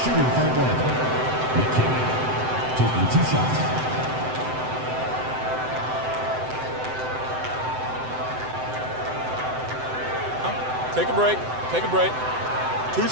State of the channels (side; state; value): left; late; 7.8 ms